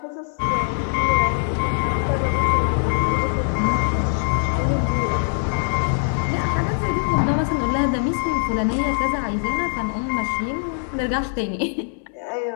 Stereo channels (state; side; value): silent; right; digital silence